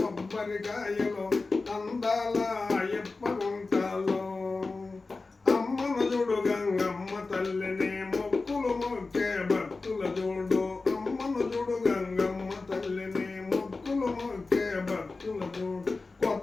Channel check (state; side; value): quieter; right; 3.7 dB